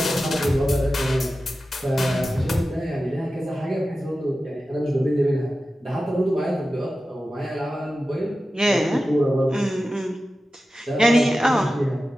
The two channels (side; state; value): both; normal; correlation 0.94